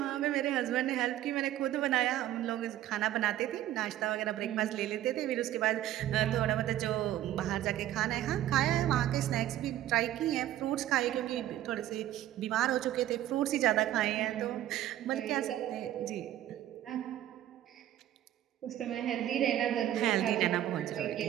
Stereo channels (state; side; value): quieter; left; 13.0 dB